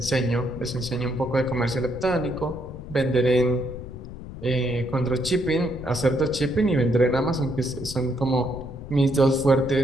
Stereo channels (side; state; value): left; noise; rumble, 11 dB below the sound